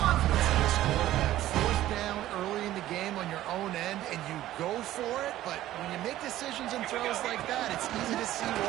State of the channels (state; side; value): quieter; left; 14.2 dB